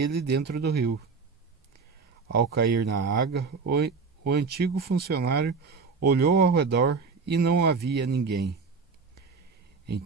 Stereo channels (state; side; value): quieter; left; 4.9 dB